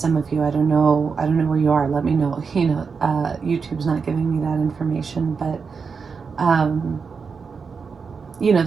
of you, I don't know where you are, let me know. You know, YouTube's not giving me that information, but you know,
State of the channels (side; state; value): left; quieter; 5.4 dB